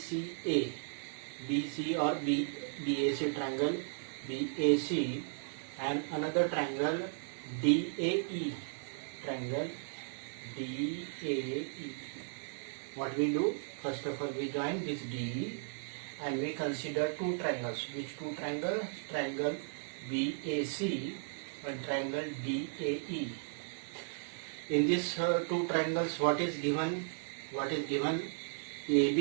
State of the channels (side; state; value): left; silent; digital silence